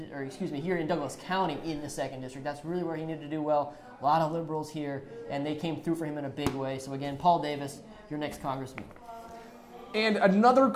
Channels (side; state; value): both; identical; correlation 1.00